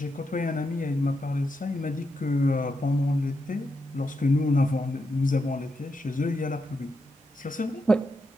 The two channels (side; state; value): both; normal; correlation 0.84